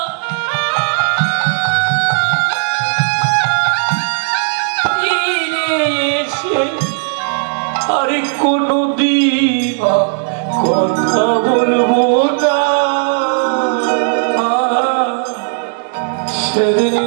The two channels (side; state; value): left; silent; digital silence